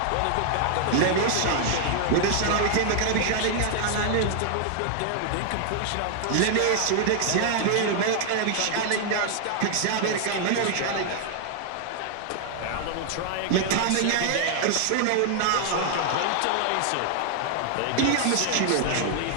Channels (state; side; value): different; both; correlation 0.00